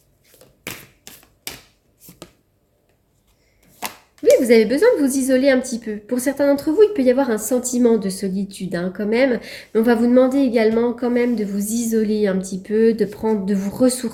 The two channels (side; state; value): both; identical; correlation 1.00